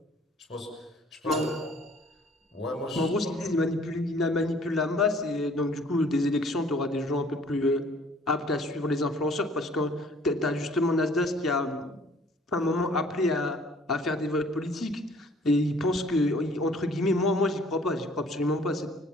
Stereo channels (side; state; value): both; normal; correlation 0.56